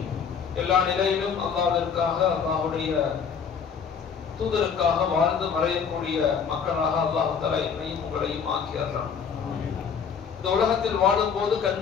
எல்லா நிலையிலும் அல்லாஹ்விற்காக, அல்லாஹ்வுடைய தூதருக்காக வாழ்ந்து மறையக்கூடிய மக்களாக அல்லாஹ் தஆலா என்னையும் உங்களையும் ஆக்கியறலாம். இந்த உலகத்தில் வாழும் போது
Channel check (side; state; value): right; quieter; 6.6 dB